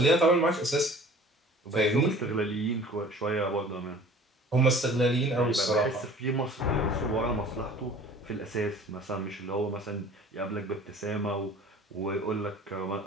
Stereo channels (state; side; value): normal; both; correlation 0.47